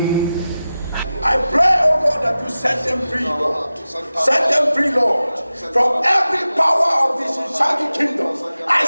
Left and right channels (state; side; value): inverted; both; correlation -0.94